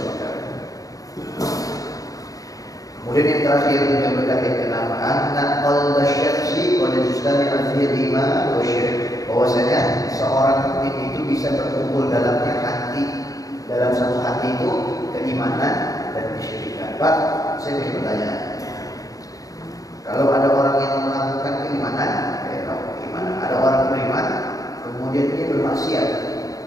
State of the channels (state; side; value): late; right; 0.17 ms